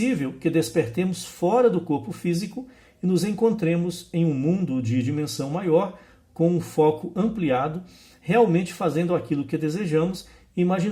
que despertemos fora do corpo físico e nos encontremos em um mundo de dimensão maior, com um foco ampliado, realmente fazendo aquilo que desejamos e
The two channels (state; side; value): identical; both; correlation 1.00